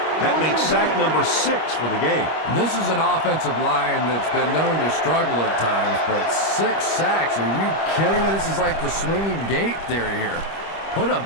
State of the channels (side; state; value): right; late; 25 ms